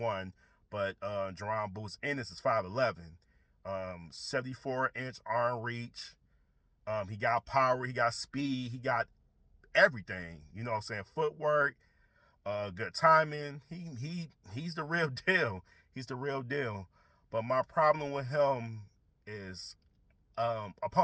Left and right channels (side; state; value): both; identical; correlation 1.00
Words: but Jaron Bout Ennis is 5'11", 74-inch arm reach. He got power, he got speed, he got everything. You know what I'm saying? Footwork, good timing. He's the real deal. He's the real deal. But my problem with him is